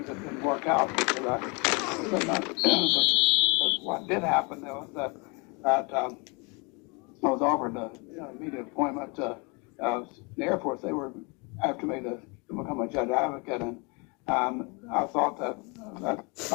that didn't work out because but what did happen was that I was offered an immediate appointment to the Air Force. They were after me to become a judge advocate, and I thought that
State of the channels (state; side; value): quieter; right; 30.7 dB